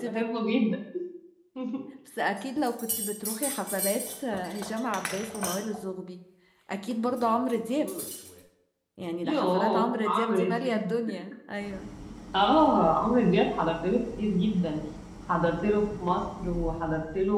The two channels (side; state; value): both; identical; correlation 1.00